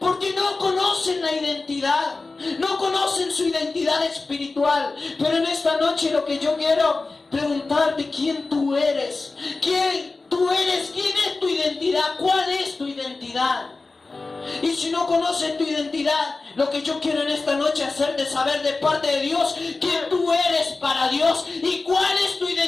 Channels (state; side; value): quieter; right; 3.6 dB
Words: porque no conocen la identidad, no conocen su identidad espiritual. Pero en esta noche lo que yo quiero preguntarte, ¿quién tú eres? ¿Quién tú eres? ¿Quién es tu identidad? ¿Cuál es tu identidad? Y si no conoces tu identidad, lo que yo quiero en esta noche hacerte saber de parte de Dios, quién tú eres para Dios y cuál es tu